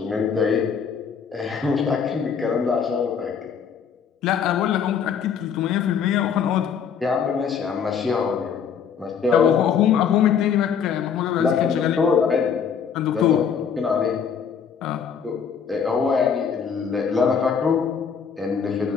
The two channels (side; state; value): right; quieter; 7.0 dB